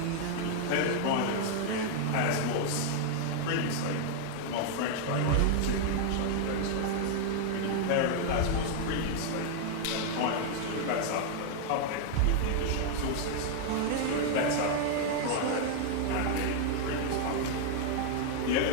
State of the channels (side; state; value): both; different; correlation 0.00